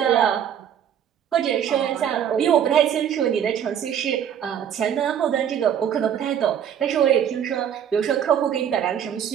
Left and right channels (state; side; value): quieter; left; 9.2 dB